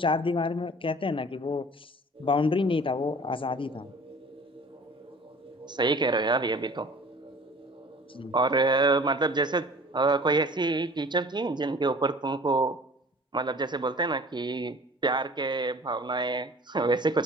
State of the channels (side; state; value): both; normal; correlation 0.46